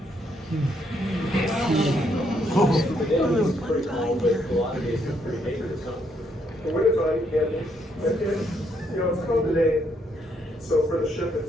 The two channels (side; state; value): both; normal; correlation 0.74